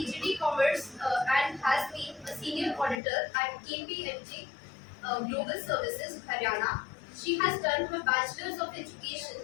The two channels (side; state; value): right; drops out; at 3.0 s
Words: Commerce and has been a senior auditor at KPMG Global Services, Haryana. She has done her Bachelor's of Education